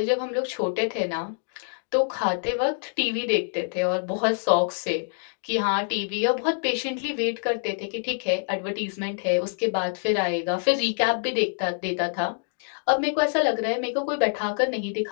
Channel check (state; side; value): silent; right; digital silence